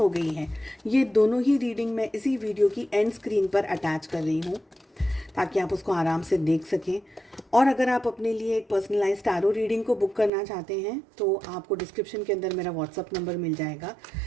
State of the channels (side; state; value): left; drops out; at 10.3 s